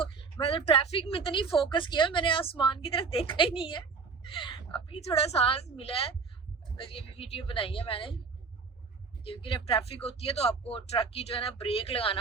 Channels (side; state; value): left; quieter; 5.0 dB